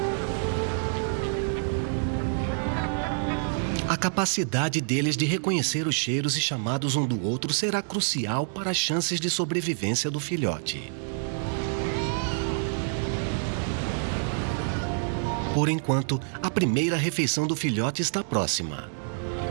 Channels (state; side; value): silent; left; digital silence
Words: A capacidade deles de reconhecer os cheiros e chamados um do outro será crucial para as chances de sobrevivência do filhote. Por enquanto, a primeira refeição do filhote está próxima.